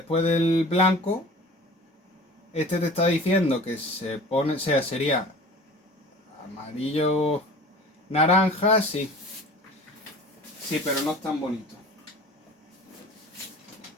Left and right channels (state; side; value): normal; both; correlation 0.41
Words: del blanco, este te está diciendo que se pone, o sea, sería amarillo naranja, sí. Sí, pero no es tan bonito.